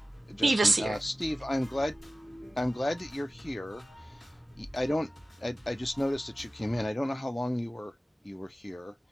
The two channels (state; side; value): normal; both; correlation 0.96